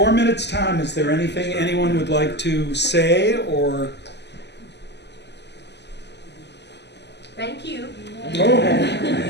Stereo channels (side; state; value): right; late; 0.50 ms